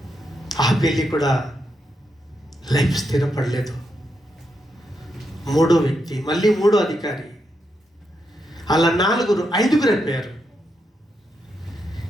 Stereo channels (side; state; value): both; normal; correlation 0.82